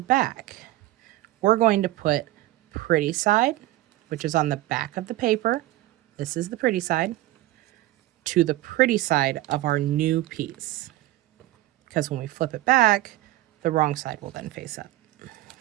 back, we're going to put pretty side, which is on the back of the paper. This is the pretty side, to the pretty side of our new piece. Because when we flip it back, the wrong side will then face up.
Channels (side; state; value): left; quieter; 16.4 dB